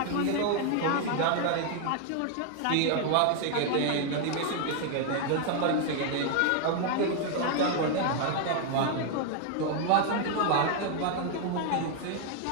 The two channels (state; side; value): different; both; correlation 0.00